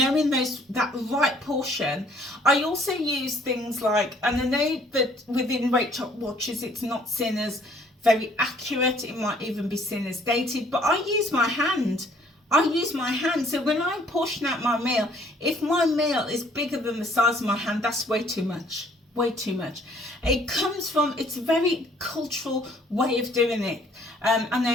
that right portion. I also use things like, and I know that within WeightWatchers it's not seen as very accurate, it might even be seen as dated, but I use my hand. So when I portion out my meal, if my meal is bigger than the size of my hand, that's way too much. It comes from, it's a very cultural way of doing it. I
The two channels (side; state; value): both; normal; correlation 0.60